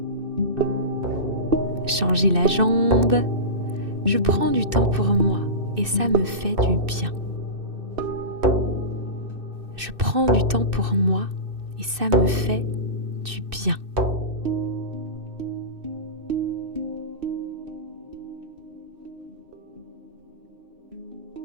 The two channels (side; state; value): left; late; 2.6 ms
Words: Changez la jambe. Je prends du temps pour moi et ça me fait du bien. Je prends du temps pour moi et ça me fait du bien.